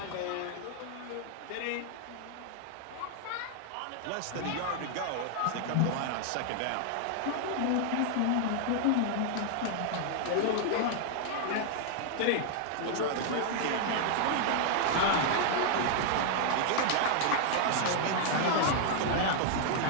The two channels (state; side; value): different; both; correlation 0.00